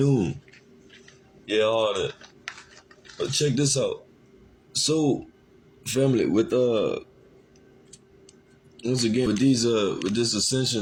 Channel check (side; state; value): both; identical; correlation 1.00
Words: Yeah, all that. But check this out. So, family, with once again with these